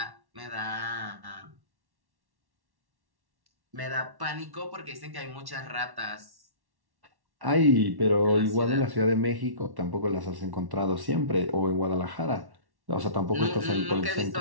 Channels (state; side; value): late; left; 1.1 ms